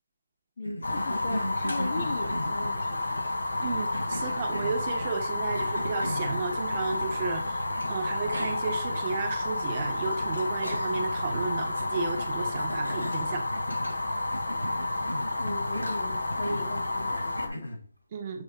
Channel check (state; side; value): inverted; both; correlation -0.88